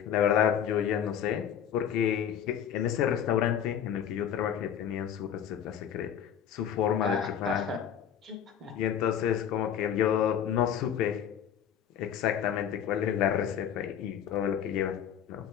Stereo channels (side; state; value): right; quieter; 9.0 dB